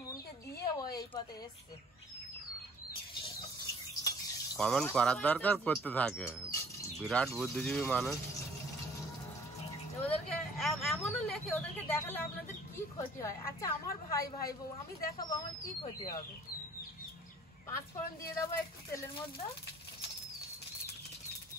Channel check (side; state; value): both; normal; correlation 0.54